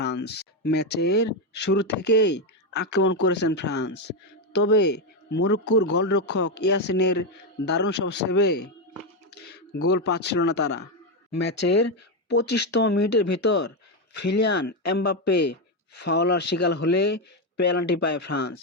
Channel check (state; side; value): normal; both; correlation 0.07